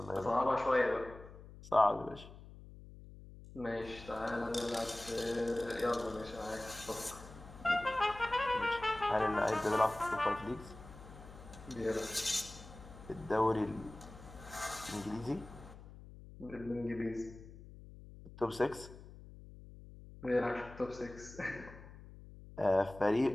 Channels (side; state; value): left; noise; hum, 17 dB below the sound